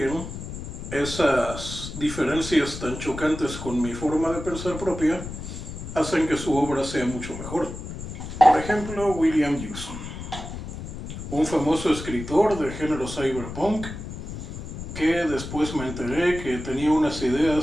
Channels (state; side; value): noise; left; rumble, 9 dB below the sound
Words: esas diferencias tan chocantes con mi forma de pensar propia hacen que su obra sea mucho mejor. Por ejemplo, William Gibson, un famoso escritor de género cyberpunk, que después me enteré que tenía unas